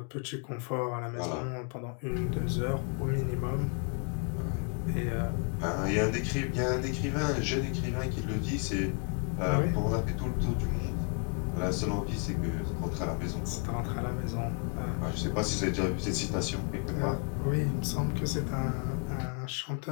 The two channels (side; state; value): right; quieter; 38.5 dB